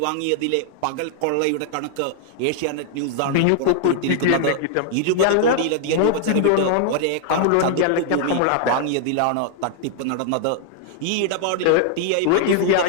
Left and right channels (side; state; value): both; different; correlation 0.00